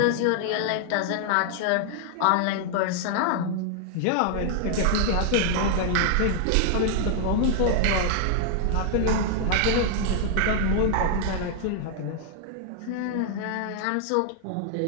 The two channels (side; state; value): both; different; correlation 0.00